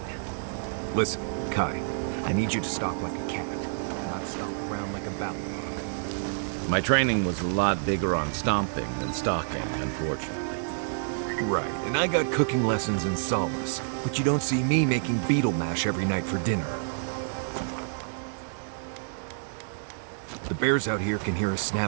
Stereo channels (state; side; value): silent; left; digital silence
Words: Listen, Kai, I need you to stalk like a cat, not stomp around like a ballarog. My training was a lot bigger on stomping than stalking, unfortunately. Right, and I got cooking lessons in solace, but you don't see me making beetle mash every night for dinner. The bears out here can hear a